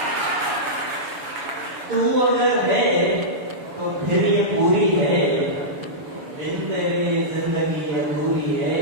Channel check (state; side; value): late; left; 7.0 ms